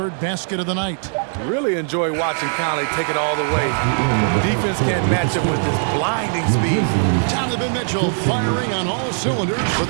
basket of the night. Really enjoy watching Conley take it all the way. Defense can't match him with his blinding speed. Donovan Mitchell firing on all cylinders for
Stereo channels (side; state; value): left; silent; 66 dB below the other